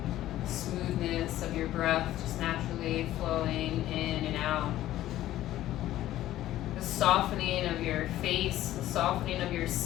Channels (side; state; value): right; quieter; 14.0 dB